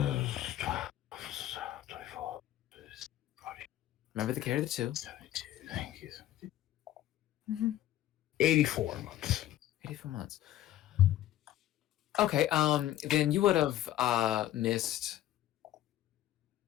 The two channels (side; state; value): right; quieter; 13.3 dB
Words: Remember the carry the 2. 72, thank you. 84 months. 84 months. Okay, then you would have missed